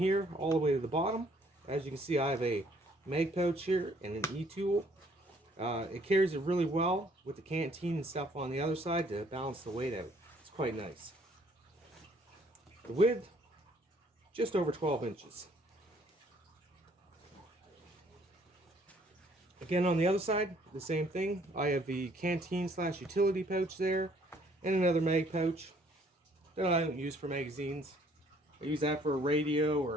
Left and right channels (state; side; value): normal; both; correlation 0.62